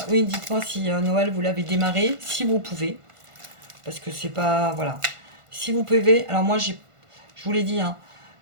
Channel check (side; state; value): left; late; 1.5 ms